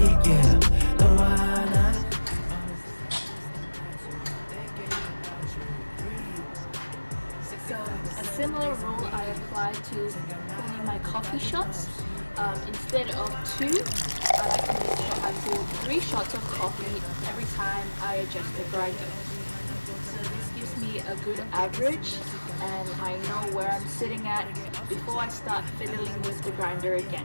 yeah. 너와 나 So a similar rule I apply to pulling my coffee shots. Instead of 2, I like to make sure I pull 3 shots of coffee every time I adjust the grinder. So this gives me a good average, and I know where I'm sitting at before I start fiddling with the grinder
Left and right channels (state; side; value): inverted; both; correlation -1.00